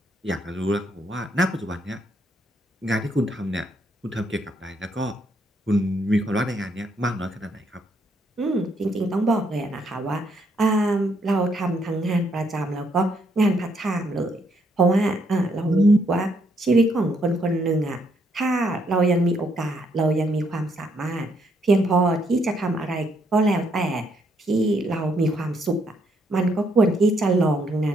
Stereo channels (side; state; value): both; normal; correlation 0.73